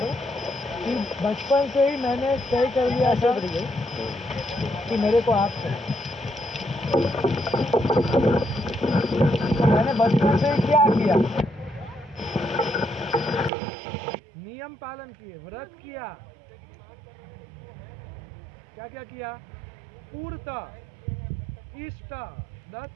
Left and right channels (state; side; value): drops out; left; at 13.5 s